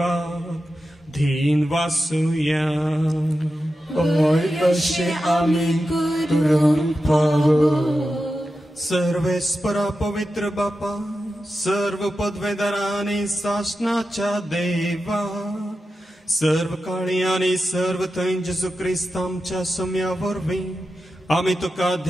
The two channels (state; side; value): normal; both; correlation 0.91